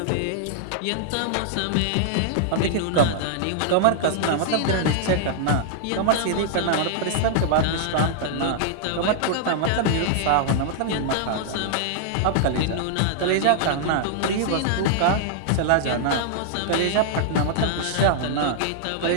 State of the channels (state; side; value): different; both; correlation -0.01